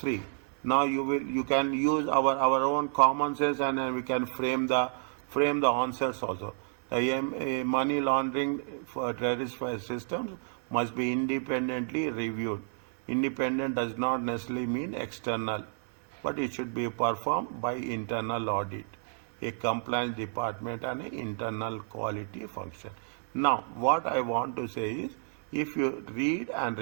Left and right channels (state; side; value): silent; left; 57 dB below the other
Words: Now you can use our own common sense, and we can frame the answers also. The money laundering for terrorist systems must be independently reviewed. Independent does not necessarily mean external, but it should be performed by internal audit, a compliance department, and an internal quality function. Now, what I want to say is, if you read and